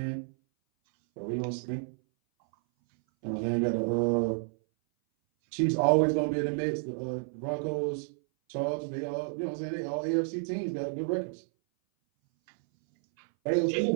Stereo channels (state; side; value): silent; left; 58 dB below the other